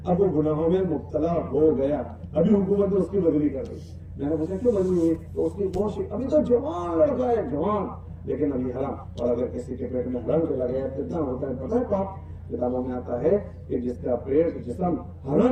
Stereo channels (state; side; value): identical; both; correlation 1.00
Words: अब वो गुनाहों में मुब्तला हो गया। अभी हुकूमत ने उसकी बदली कर दी। मैंने पूछा क्यों बदली हुई? तो उसकी बहुत, अभी तो जवान लड़का है, जवान, लेकिन अभी हराम। और अगर किसी के पेट में हराम चला गया कितना होता है पता है पाप? किताबों में आता है कि जिसका पेट जिस्म